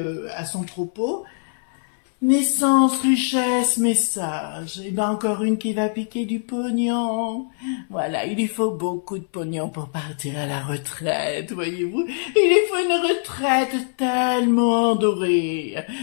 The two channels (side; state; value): right; silent; 64 dB below the other